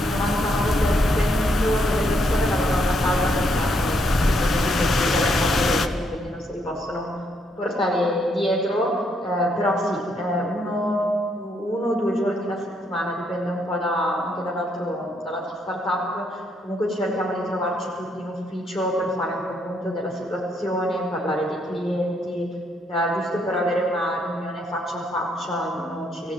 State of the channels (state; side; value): normal; both; correlation 0.74